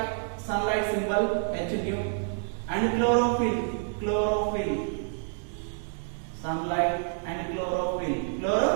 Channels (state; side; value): silent; left; 59 dB below the other